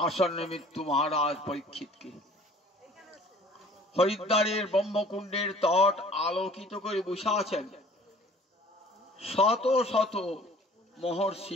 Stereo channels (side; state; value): both; normal; correlation 0.51